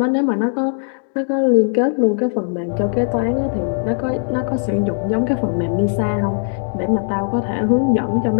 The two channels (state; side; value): silent; right; digital silence